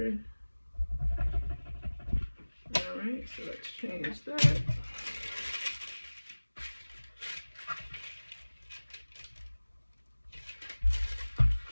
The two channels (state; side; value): inverted; both; correlation -1.00